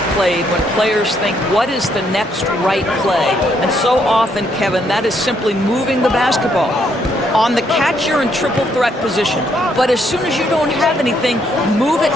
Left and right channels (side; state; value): both; normal; correlation 0.72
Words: played when players think, what is the next right play? And so often, Kevin, that is simply moving the basketball. On the catch, you're in triple threat position. But as soon as you don't have anything, move it